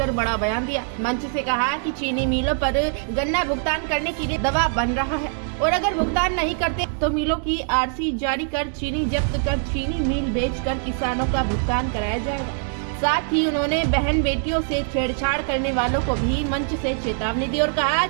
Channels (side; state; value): left; silent; 58 dB below the other